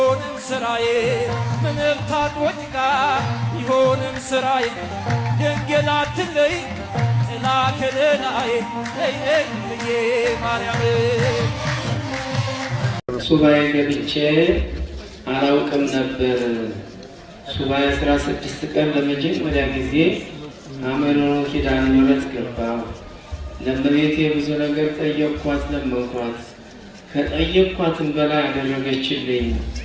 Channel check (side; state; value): both; identical; correlation 1.00